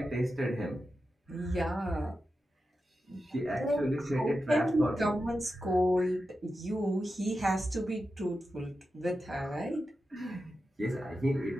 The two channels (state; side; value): normal; both; correlation 0.90